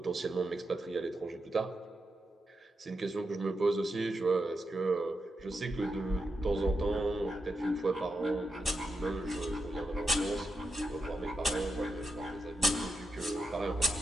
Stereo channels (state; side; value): normal; both; correlation 0.86